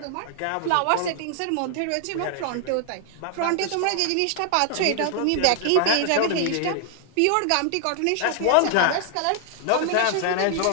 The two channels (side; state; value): both; different; correlation 0.00